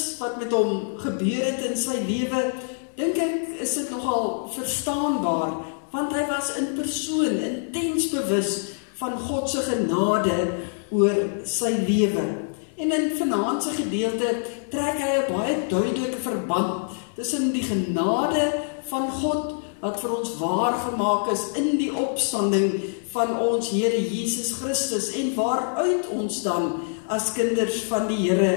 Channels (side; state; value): right; silent; 62 dB below the other